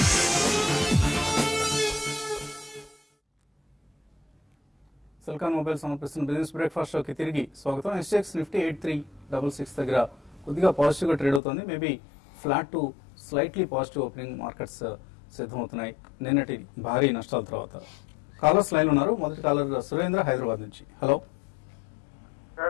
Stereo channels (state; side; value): drops out; right; at 11.4 s